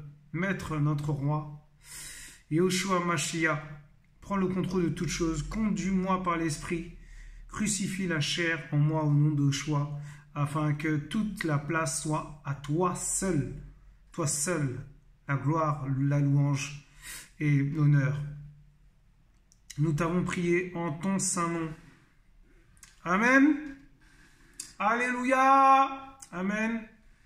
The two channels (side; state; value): both; identical; correlation 1.00